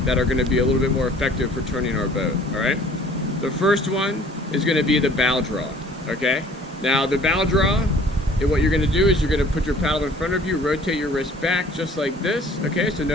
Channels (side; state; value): both; normal; correlation 0.53